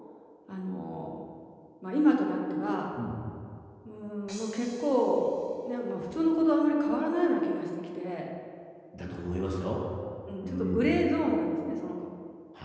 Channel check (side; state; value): both; identical; correlation 1.00